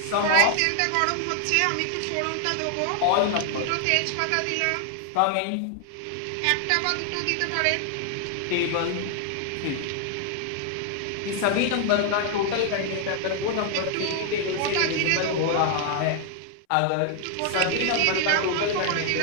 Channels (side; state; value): both; different; correlation 0.00